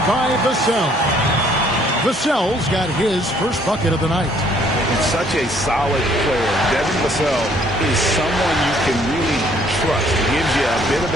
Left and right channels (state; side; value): normal; both; correlation 0.62